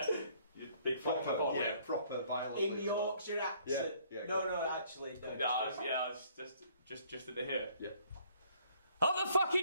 Big proper violent. In Yorkshire accent. Yeah, no, actually, no. I was just at the here. Yeah. Up the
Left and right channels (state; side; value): inverted; both; correlation -0.61